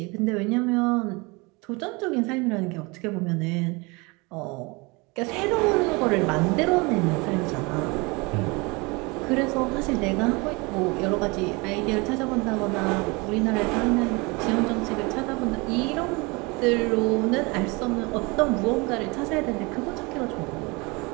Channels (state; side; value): quieter; left; 26.8 dB